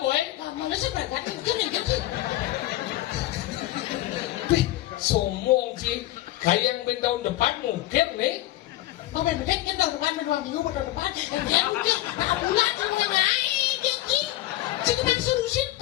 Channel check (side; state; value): right; quieter; 15.8 dB